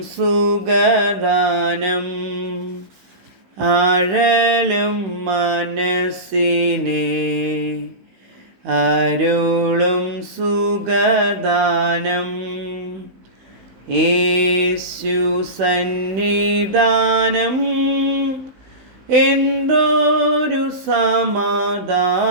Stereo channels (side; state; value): left; late; 16 ms